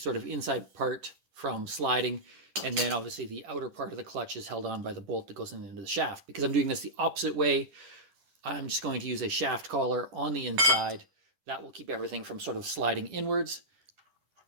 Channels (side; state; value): left; late; 10 ms